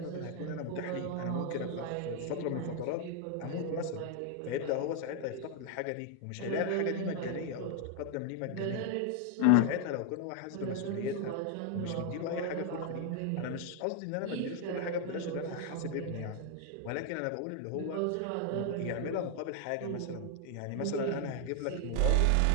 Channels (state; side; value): different; both; correlation 0.00